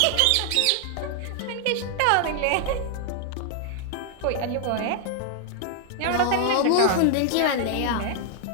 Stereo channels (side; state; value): both; different; correlation 0.00